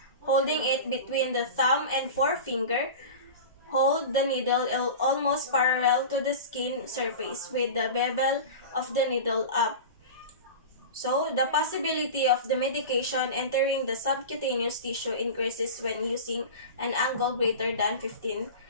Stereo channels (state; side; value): inverted; both; correlation -0.30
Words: holding it between the thumb and forefinger. Hold the needle almost parallel to the skin surface with the bevel of the needle up. So, the possibility of the medication entering the subcutaneous tissue increases when using an angle greater than 15